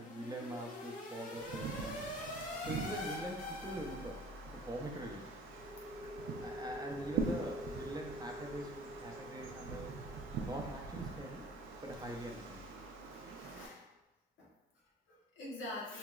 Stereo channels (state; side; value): normal; both; correlation 0.47